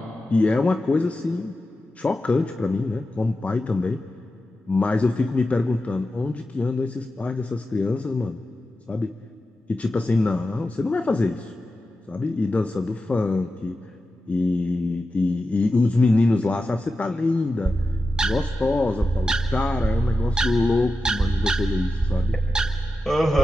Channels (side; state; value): both; normal; correlation 0.92